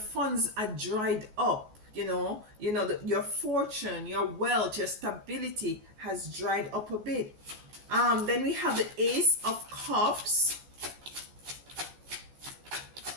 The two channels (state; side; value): late; left; 14 ms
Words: are dried up. Your fortune, your wealth, your stability has dried up a bit. Then we have the Ace of Cups.